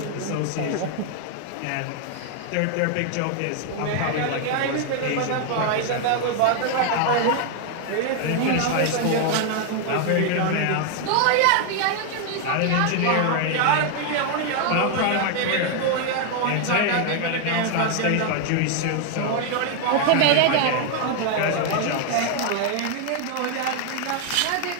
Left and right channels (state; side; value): different; both; correlation 0.00